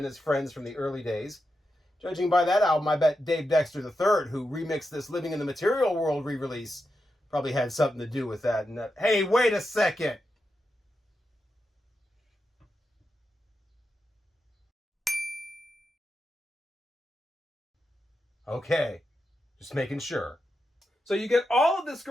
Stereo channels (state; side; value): normal; both; correlation 0.87